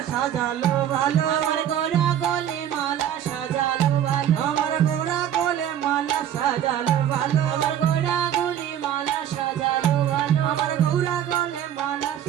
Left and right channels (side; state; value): left; quieter; 10.3 dB